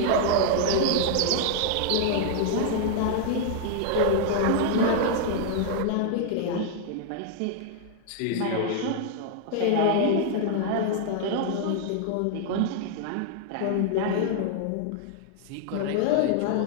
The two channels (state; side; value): different; both; correlation 0.00